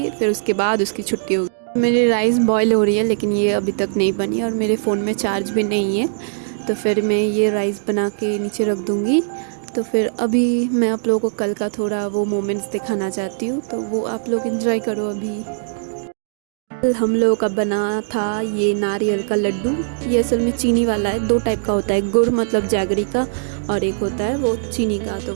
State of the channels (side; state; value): left; silent; digital silence